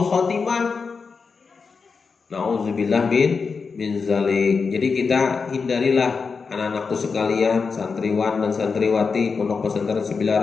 khotimah. Na'udzubillah min zalik. Jadi kita hindarilah anak-anakku sekalian, santriwan dan santriwati Pondok Pesantren Sembilan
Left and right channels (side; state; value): right; quieter; 5.1 dB